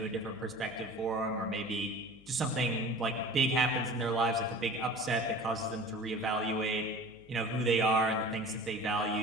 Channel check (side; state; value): left; noise; hum, 25 dB below the sound